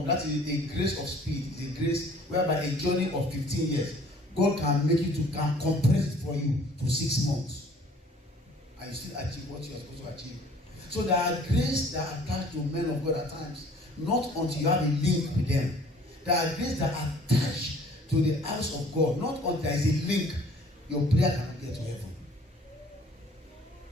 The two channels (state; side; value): normal; both; correlation 0.53